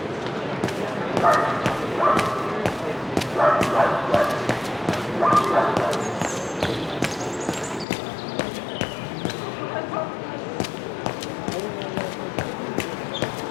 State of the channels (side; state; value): right; drops out; at 7.9 s